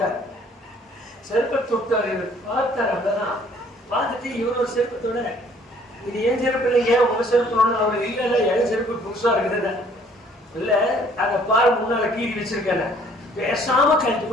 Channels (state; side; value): normal; both; correlation 0.59